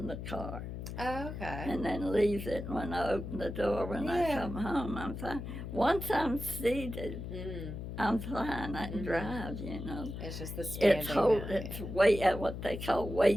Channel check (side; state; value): left; noise; hum, 7 dB below the sound